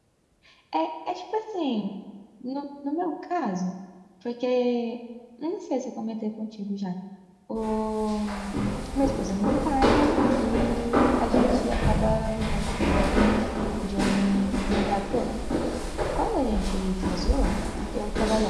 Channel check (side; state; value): both; identical; correlation 1.00